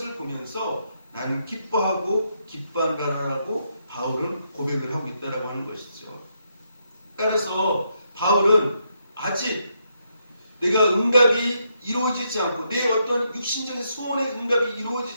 보면서 나는 기뻐하고 기뻐한다라고 바울은 고백을 하고 있다라고 하는 것이죠. 따라서 바울은 아직 내가 응답이 이루어지지 않고 내 어떤 육신적인 소원의 응답이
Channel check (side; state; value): both; inverted; correlation -0.78